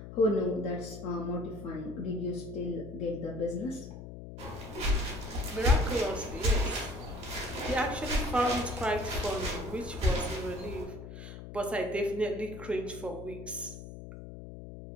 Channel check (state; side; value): noise; left; hum, 11 dB below the sound